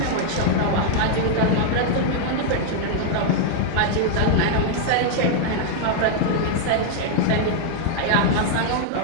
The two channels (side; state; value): both; different; correlation 0.00